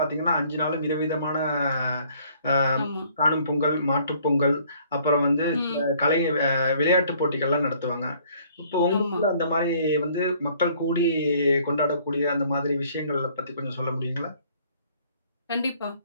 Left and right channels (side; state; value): both; inverted; correlation -0.60